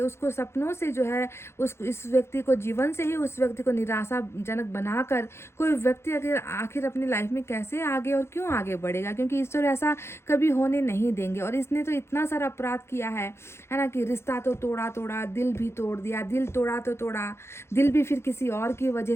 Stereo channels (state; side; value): late; right; 0.12 ms